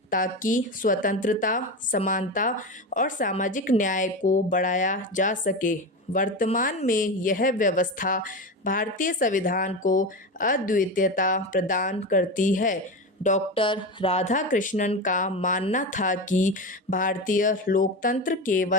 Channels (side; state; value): both; normal; correlation 0.21